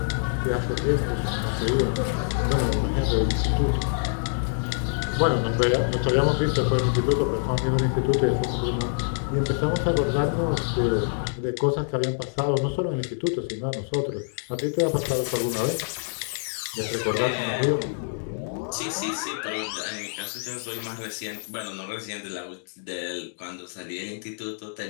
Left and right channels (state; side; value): silent; right; digital silence